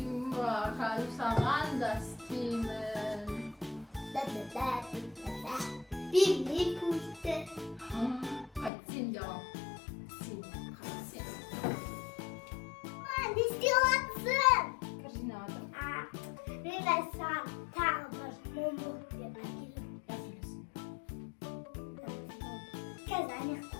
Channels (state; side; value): drops out; right; at 8.7 s